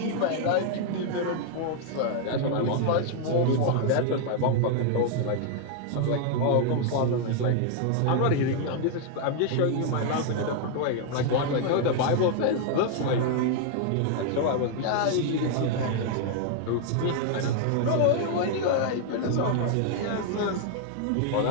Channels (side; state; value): both; different; correlation 0.00